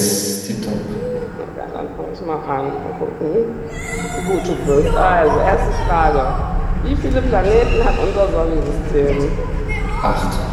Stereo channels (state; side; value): identical; both; correlation 1.00